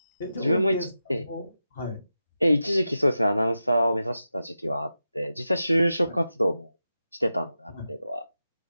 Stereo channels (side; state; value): both; inverted; correlation -0.91